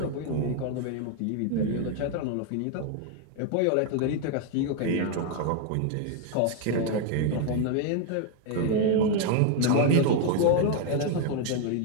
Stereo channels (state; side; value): different; both; correlation 0.01